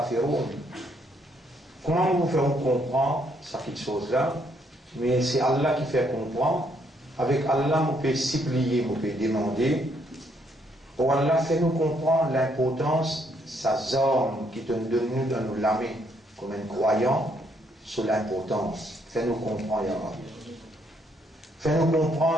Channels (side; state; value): both; normal; correlation 0.71